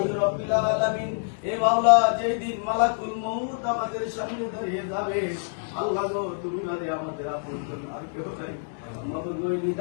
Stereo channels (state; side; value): silent; right; digital silence